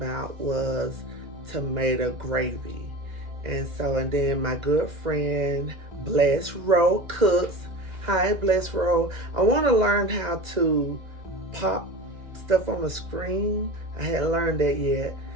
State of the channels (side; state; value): left; late; 2.0 ms